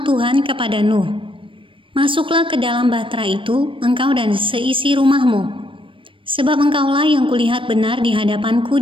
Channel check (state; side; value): late; left; 0.25 ms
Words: Tuhan kepada Nuh, "Masuklah ke dalam bahtera itu, engkau dan seisi rumahmu, sebab engkaulah yang kulihat benar di hadapanku